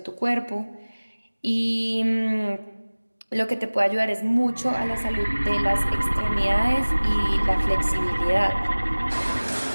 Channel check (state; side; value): inverted; both; correlation -1.00